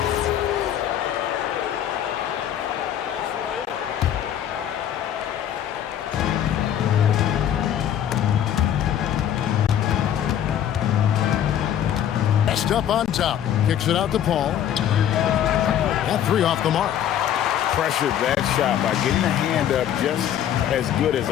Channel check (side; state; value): right; quieter; 10.2 dB